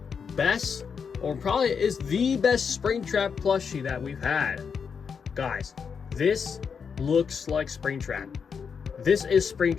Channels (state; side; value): quieter; right; 6.3 dB